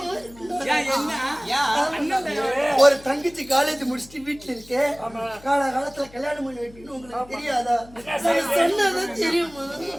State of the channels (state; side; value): noise; left; hum, 22 dB below the sound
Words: ஒரு தங்கச்சி காலேஜ் முடிச்சுட்டு வீட்டுல இருக்கு. காலத்துல கல்யாணம் பண்ணி வைப்பீங்கன்னு உங்களுக்கு தெரியாதா? சொன்னதான் தெரியுமா?